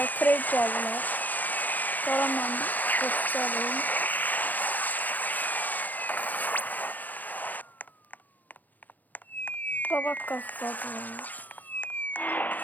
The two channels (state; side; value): late; right; 0.083 ms